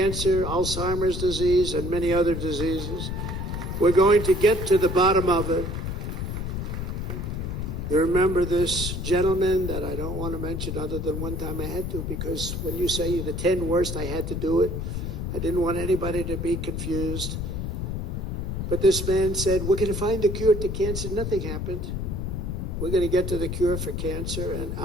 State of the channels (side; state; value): left; noise; rumble, 3 dB below the sound